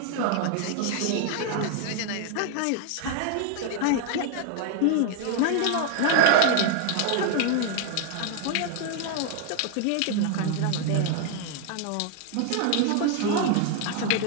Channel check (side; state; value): both; different; correlation 0.00